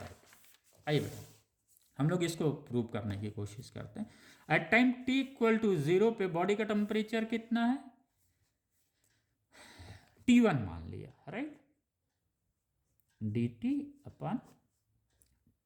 आइए बेटा हम लोग इसको प्रूव करने की कोशिश करते हैं। At time t equal to 0 पे बॉडी का टेम्परेचर कितना है? T1 मान लिया, राइट। dt अपन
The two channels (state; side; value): identical; both; correlation 1.00